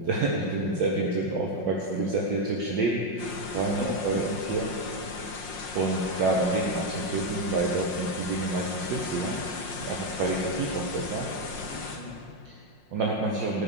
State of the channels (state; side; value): late; right; 5.6 ms